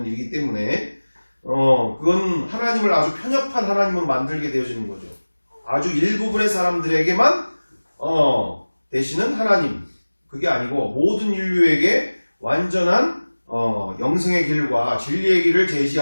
일이기 때문에 그건 하나님을 아주 편협한 하나님으로 만들게 되어지는 거죠. 아주 일부분의 사람들에게만 되시는 하나님, 그게 아니고 모든 인류에게 완전한 영생의 길과 진리의 길을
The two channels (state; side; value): inverted; both; correlation -1.00